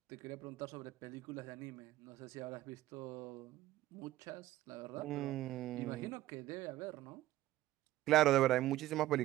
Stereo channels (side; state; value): left; quieter; 15.2 dB